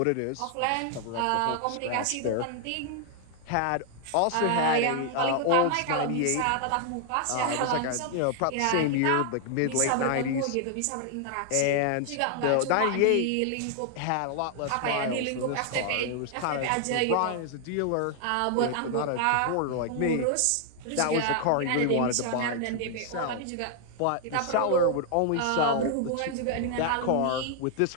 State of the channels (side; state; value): both; different; correlation 0.00